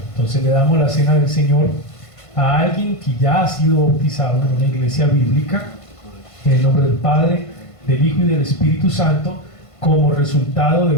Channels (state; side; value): late; right; 1.5 ms